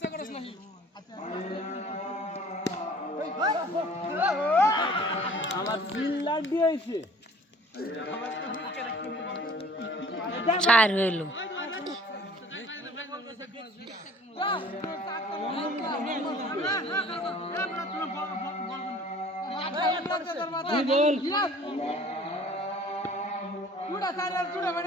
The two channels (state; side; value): normal; both; correlation 0.50